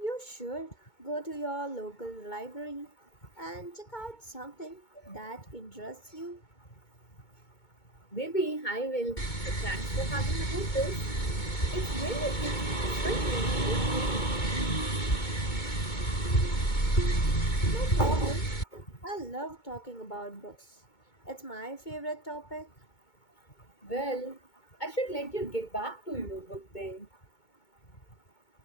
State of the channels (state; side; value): late; right; 2.2 ms